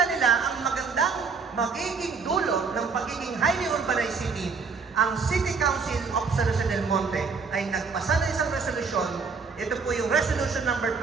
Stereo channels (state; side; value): quieter; left; 5.1 dB